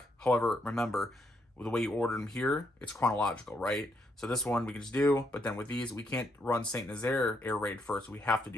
However, remember, the way you order them here, it's chronological, right? So this one we can just do, but then with these, we can't run Saint Nazaire air raid first. We have to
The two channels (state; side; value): normal; both; correlation 0.75